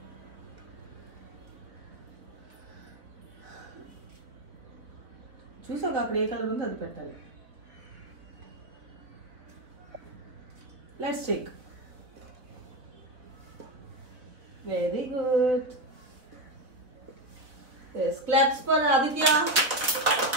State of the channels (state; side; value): late; left; 3.9 ms